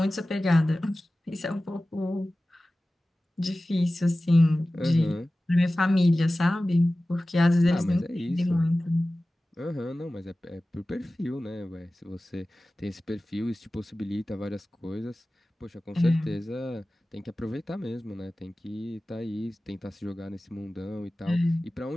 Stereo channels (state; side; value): normal; both; correlation 0.96